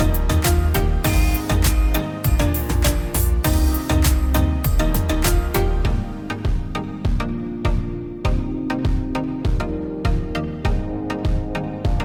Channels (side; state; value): both; identical; correlation 1.00